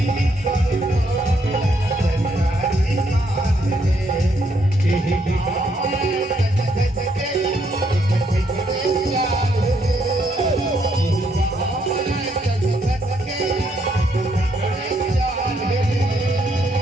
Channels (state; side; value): normal; both; correlation 0.73